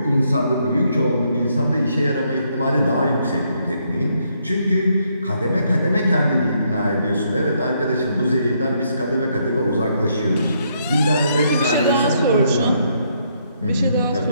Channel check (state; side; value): inverted; both; correlation -0.73